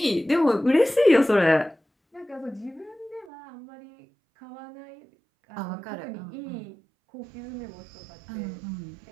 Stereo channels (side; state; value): left; drops out; at 3.2 s